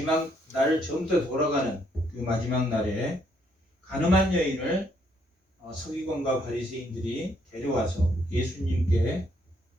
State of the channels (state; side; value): normal; both; correlation 0.71